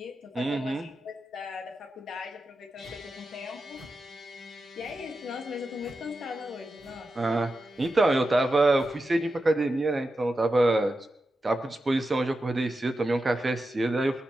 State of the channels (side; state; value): both; normal; correlation 0.90